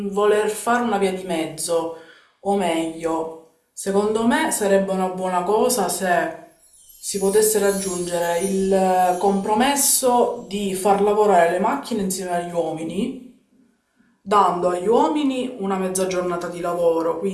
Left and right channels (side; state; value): both; identical; correlation 1.00